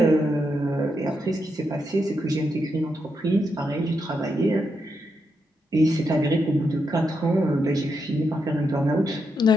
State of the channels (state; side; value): normal; both; correlation 0.83